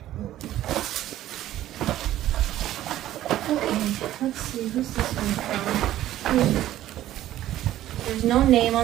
Okay, let's see. Who's this one from? There's no name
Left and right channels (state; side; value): quieter; left; 13.6 dB